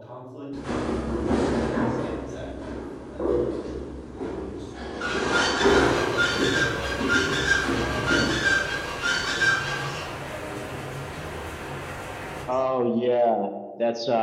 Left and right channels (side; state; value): both; identical; correlation 1.00